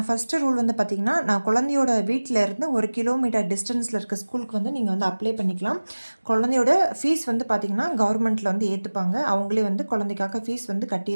ஃபஸ்ட்டு ரூல் வந்து பார்த்திங்கன்னா, நான் குழந்தையோட வீட்டில் இருந்து 1 கிலோமீட்டர் டிஸ்டன்ஸில் இருக்க ஸ்கூலுக்கு வந்து நீங்கள் வந்து அப்ளை பண்ணிக்கலாம். குழந்தையோட ஃபீஸ் வந்து பார்த்திங்கன்னா கவர்மெண்ட்டில் வந்து ஏற்றுப்பாங்க. அவங்களே வந்து குழந்தைக்காக ஃபீஸ் வந்து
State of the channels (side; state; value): both; inverted; correlation -1.00